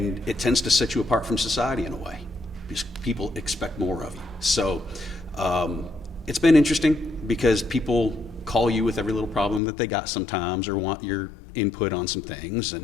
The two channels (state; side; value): drops out; right; at 9.6 s